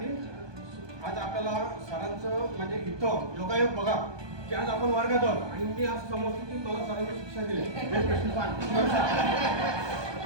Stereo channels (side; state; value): left; late; 1.2 ms